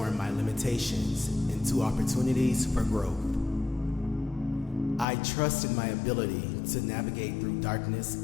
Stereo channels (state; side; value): drops out; right; at 5.1 s